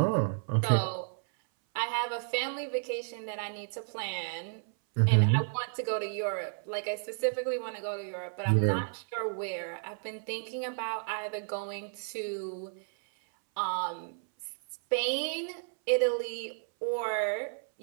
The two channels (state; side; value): silent; left; 56 dB below the other